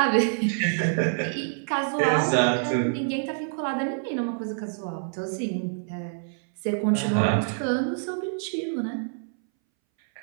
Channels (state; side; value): silent; left; 61 dB below the other